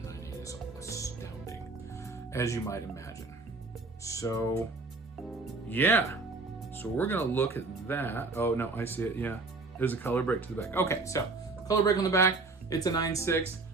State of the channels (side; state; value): left; quieter; 3.6 dB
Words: a 9.8 is astounding, as you might imagine. So, yeah. So we're gonna look at that. Oh no, I see it. Yeah, there's a color break to the back. Okay, so color break on the back. It's a 9.6.